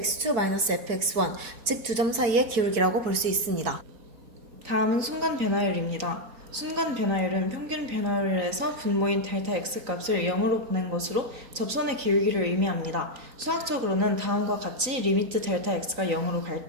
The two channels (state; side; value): late; left; 3.9 ms